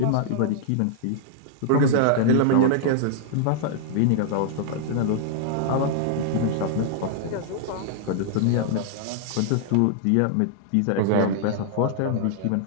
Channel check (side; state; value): both; different; correlation -0.01